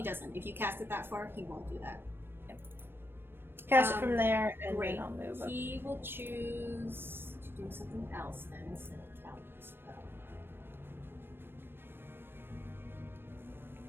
doesn't. If you cast it that far, he won't do that. Cast it from there, and great. then I'll move up. He will choose to do something else then instead of counterspell.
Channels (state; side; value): late; left; 0.10 ms